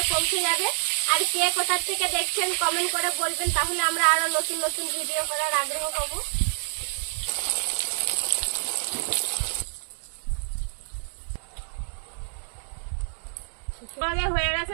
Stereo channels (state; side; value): silent; left; digital silence